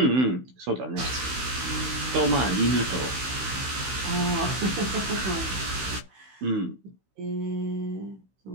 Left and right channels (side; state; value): left; late; 16 ms